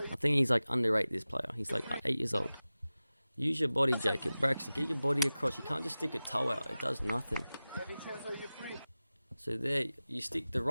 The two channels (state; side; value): inverted; both; correlation -0.96